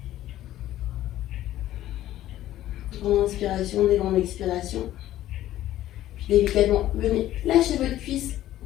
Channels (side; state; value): right; quieter; 13.6 dB